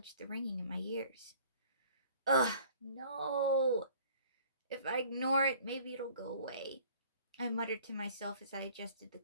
the ringing in my ears. Ugh, no. If I ignore it, maybe it'll go away, I muttered to myself as I adjusted the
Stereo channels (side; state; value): both; inverted; correlation -0.52